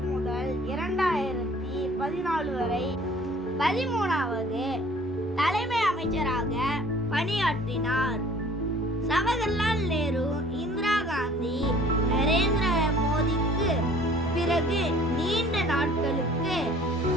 முதல் 2014 வரை 13வது தலைமை அமைச்சராக பணியாற்றினார். ஜவஹர்லால் நேரு, இந்திரா காந்தி, நரேந்திர மோடிக்கு பிறகு நீண்ட நாட்களுக்கு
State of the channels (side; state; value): both; normal; correlation 0.52